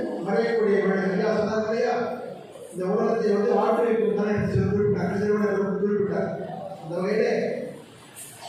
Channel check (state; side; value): identical; both; correlation 1.00